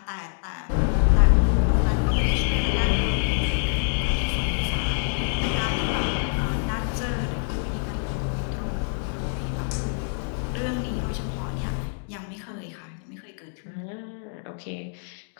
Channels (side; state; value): right; silent; 61 dB below the other